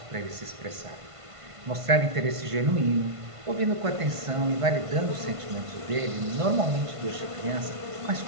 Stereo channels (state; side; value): late; left; 1.5 ms